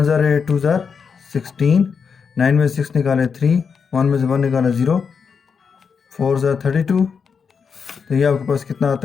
ज़ार 8 2 ज़ार 16। 9 में 6 निकाले 3, 1 में से 1 निकाला 0, 4 ज़ार 32। तो ये आपके पास कितना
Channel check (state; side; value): quieter; right; 6.0 dB